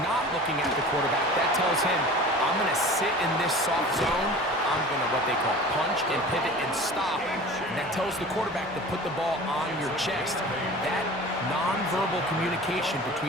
not looking at the quarterback, that tells him, I'm going to sit in this soft zone. I'm going to what they call punch and pivot and stop. And that tells the quarterback to put the ball on your chest. That nonverbal communication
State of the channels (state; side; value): normal; both; correlation 0.40